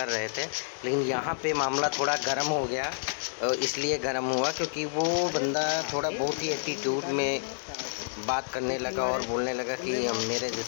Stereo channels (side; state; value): right; silent; digital silence